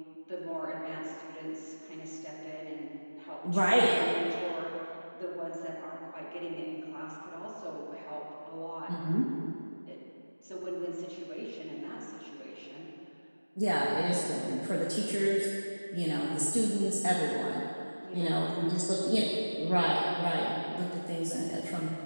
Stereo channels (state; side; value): inverted; both; correlation -1.00